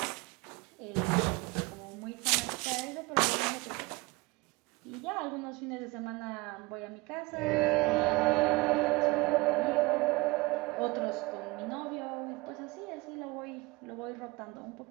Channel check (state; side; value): quieter; left; 23.7 dB